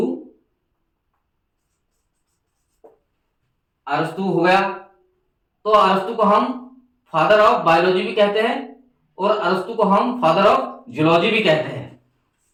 अरस्तु हो गया। तो अरस्तु को हम फादर ऑफ बायोलॉजी भी कहते हैं और अरस्तु को हम फादर ऑफ जूलॉजी भी कहते हैं।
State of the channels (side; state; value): both; identical; correlation 1.00